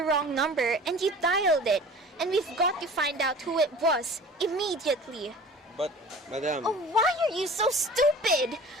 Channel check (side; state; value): both; normal; correlation 0.42